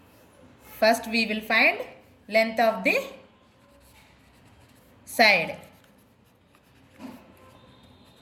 First we will find length of the side.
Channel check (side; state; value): both; identical; correlation 1.00